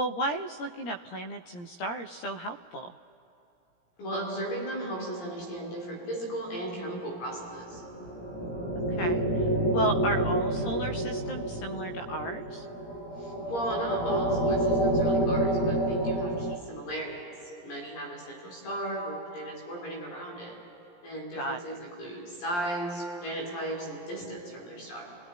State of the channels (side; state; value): right; late; 17 ms